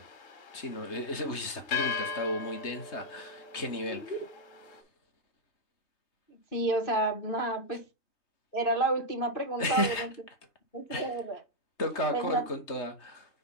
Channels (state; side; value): late; right; 3.2 ms